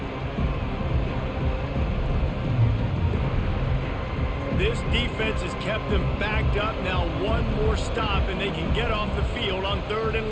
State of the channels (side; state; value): both; identical; correlation 1.00